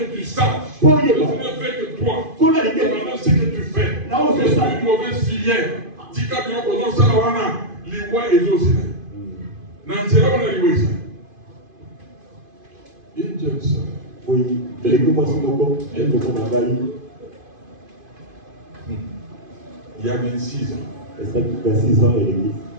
tu saches que je ne fais que toi. Maintenant, ce que tu fais, je suis une mauvaise filière. Tika bio kono salawana liwa ezosina. Nansera wana liwa isa. Injesa. Oui, Beleka Simoko, elle me connaît. Il y a 26 ans. Et ça, 26 ans, elle est dit.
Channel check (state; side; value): late; left; 2.5 ms